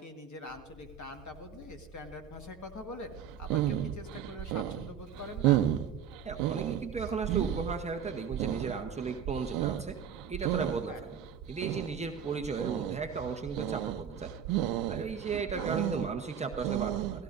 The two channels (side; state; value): left; quieter; 8.0 dB